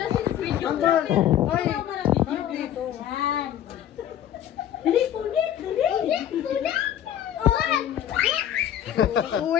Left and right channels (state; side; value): quieter; right; 10.8 dB